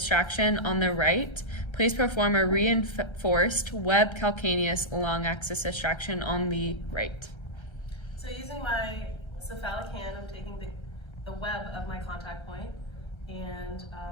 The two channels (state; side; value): late; right; 1.3 ms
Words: on the right. Please perform a reinforced web calcaneus long axis distraction on the right. So using my cephalic hand, I'm taking the web of my contact point and